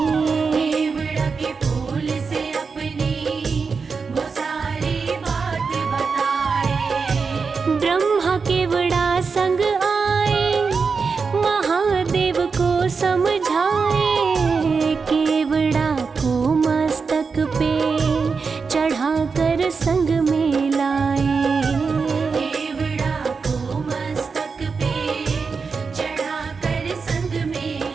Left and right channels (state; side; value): quieter; left; 5.1 dB